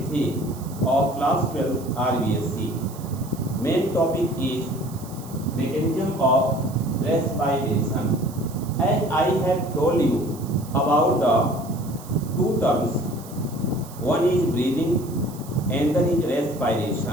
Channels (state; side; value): noise; right; hiss, 19 dB below the sound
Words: of class 12 RBSc. Main topic is mechanism of respiration. As I have told you about the two terms, one is breathing and then is